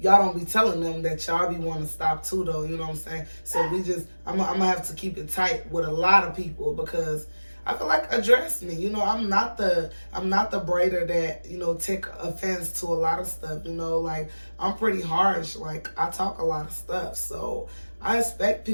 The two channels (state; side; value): inverted; both; correlation -1.00